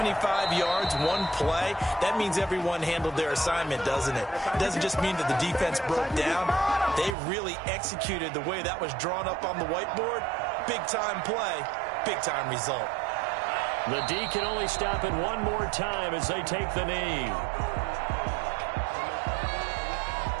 yards, one play. That means everyone handled their assignment, doesn't it? It doesn't just mean that the defense broke down. They really executed the way that was drawn up on the whiteboard. Big-time play, big-time result. The D can only stop it one more time as they take the knee.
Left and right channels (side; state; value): left; drops out; at 7.2 s